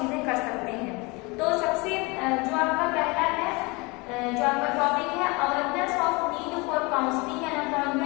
कर सकते हैं। तो सबसे जो आपका पहला है जो आपका टॉपिक है awareness of need for counselling and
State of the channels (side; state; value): right; quieter; 26.4 dB